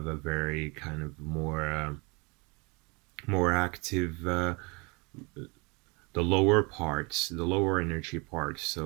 a very kind of more active, the lower parts, the lower energy parts.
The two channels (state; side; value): quieter; left; 28.5 dB